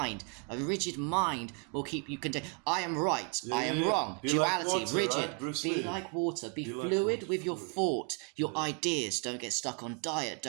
A rigid mind will keep you contained. I am right, I am wrong. Be Duality, like water, rigid. right? Bruce Be Lee. like water. Be Be like fluid water, with your fluid. thought, your ideas. Don't get stuck on diet.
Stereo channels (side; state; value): left; quieter; 35.9 dB